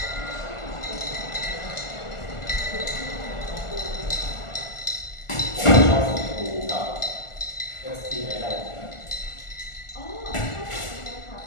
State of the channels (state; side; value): late; right; 1.4 ms